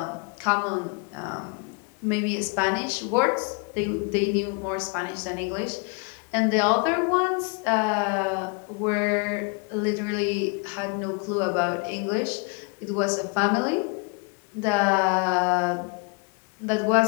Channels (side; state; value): right; quieter; 34.1 dB